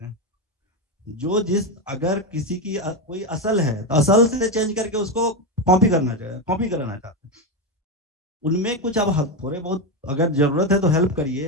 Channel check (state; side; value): normal; both; correlation 0.11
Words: हैं। जो जिस अगर किसी की कोई असल है तो असल से चेंज करके उसको कॉपी कराना चाहते हैं। उनमें कुछ अब थोड़े बहुत अगर जरूरत है तो हेल्प